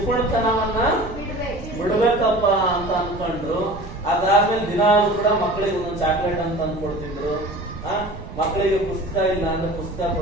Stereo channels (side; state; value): right; noise; rumble, 13 dB below the sound